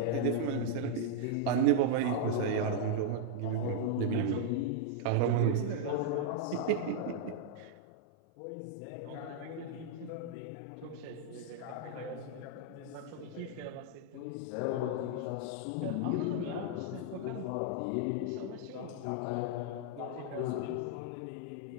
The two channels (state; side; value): different; both; correlation -0.01